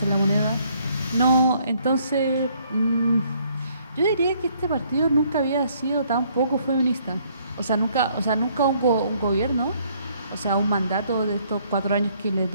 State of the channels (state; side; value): inverted; both; correlation -0.66